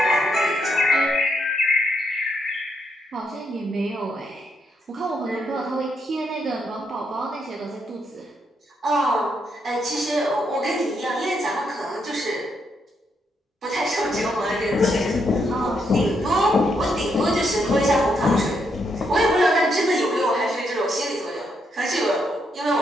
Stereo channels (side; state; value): both; normal; correlation 0.78